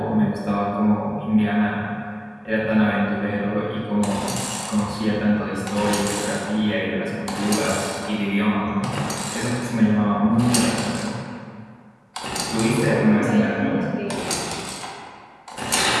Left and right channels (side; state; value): both; identical; correlation 1.00